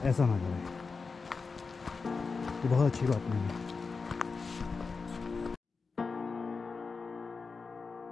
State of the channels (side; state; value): right; quieter; 4.6 dB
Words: ऐसा ना करें, ये बहुत अच्छी बात नहीं है।